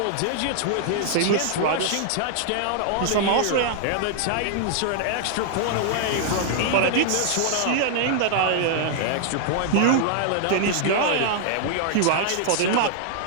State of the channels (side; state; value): both; different; correlation -0.01